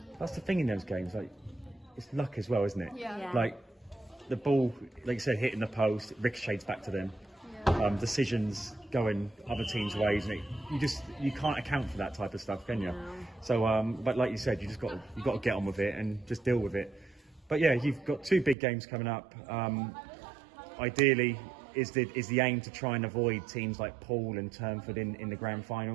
That's the thing in those games, like it's luck as well, isn't it? Yeah. Yeah. Like the ball, like you said, hitting the post, it ricochets back to them. Decisions going other teams' ways, and you can't account for that type of stuff, can you? No. So, but like you said, you got to get on with it and just deal with it. But yeah, you've got 2 big games coming up. Ideally, is the aim to try and avoid teams like Poole and Turnford in the grand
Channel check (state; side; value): drops out; left; at 18.6 s